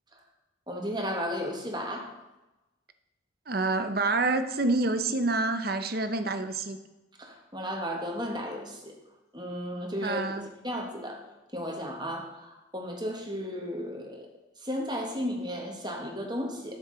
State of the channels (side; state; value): both; normal; correlation 0.34